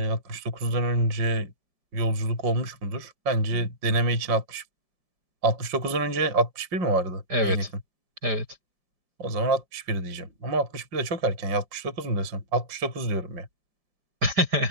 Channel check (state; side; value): late; left; 5.6 ms